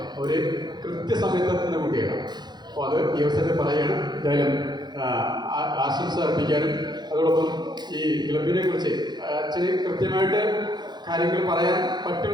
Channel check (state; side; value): late; left; 0.21 ms